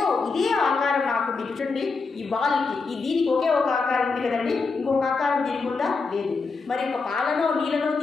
ఇదే ఆకారం నాకు చూడండి, ఈ బాల్కి దీనికి ఒకే ఒక ఆకారం ఉంది కదండి, ఇంకొక ఆకారం దీనికి ఉందా? లేదు. మరి ఒక పాలనో నీళ్ళనో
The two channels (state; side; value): quieter; right; 4.4 dB